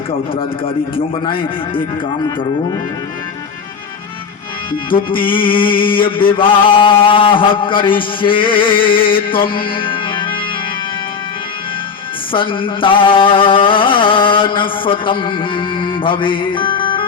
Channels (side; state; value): right; quieter; 6.0 dB